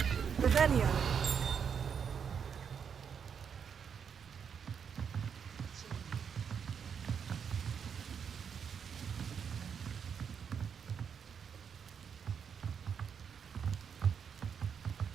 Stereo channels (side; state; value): left; quieter; 7.1 dB